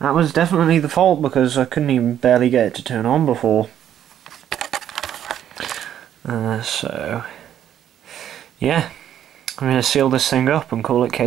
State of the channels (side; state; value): left; quieter; 10.4 dB